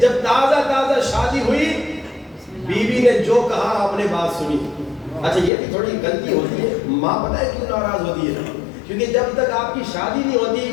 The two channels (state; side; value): drops out; right; at 5.5 s